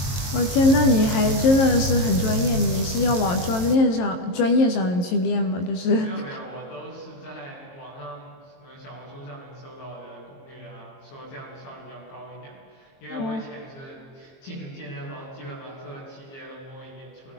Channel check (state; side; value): late; right; 22 ms